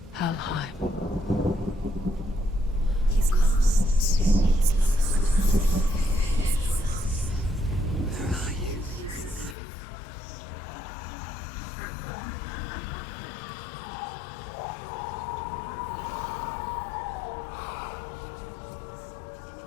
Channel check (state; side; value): drops out; right; at 9.6 s